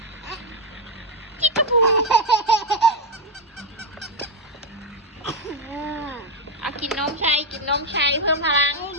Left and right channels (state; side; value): normal; both; correlation 0.06